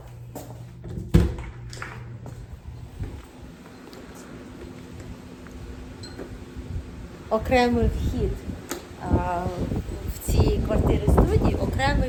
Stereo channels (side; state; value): both; identical; correlation 1.00